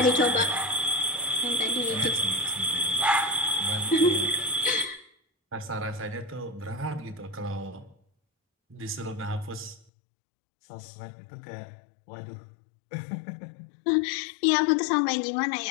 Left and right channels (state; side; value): drops out; right; at 9.8 s